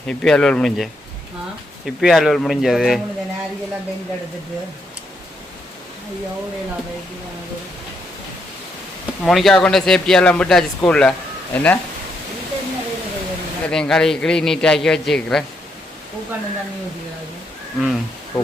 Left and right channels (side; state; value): both; normal; correlation 0.77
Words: இப்பயே அலுவல் முடிஞ்ச இப்பயே அலுவல் முடிஞ்சது மோனிகா கொண்டு சேஃப்டியெல்லாம் விட்டாச்சு ஸ்கூலில் என்ன எல்லாத்தையும் கழுவி நீட்டாக்கி வச்சுக்கிறேன். பூக்காண்டு தண்ணி ஊற்றிக்கிறாரு. ம்